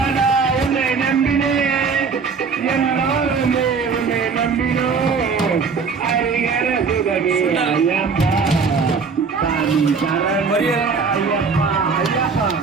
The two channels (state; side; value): quieter; left; 5.3 dB